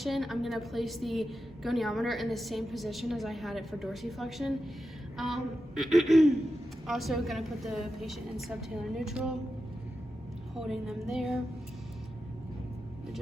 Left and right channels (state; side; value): normal; both; correlation 0.90